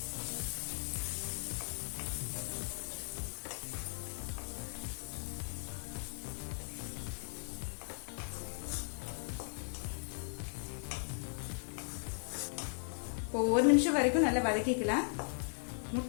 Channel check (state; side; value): silent; right; digital silence